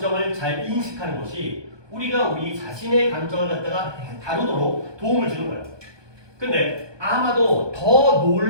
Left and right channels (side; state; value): left; late; 1.2 ms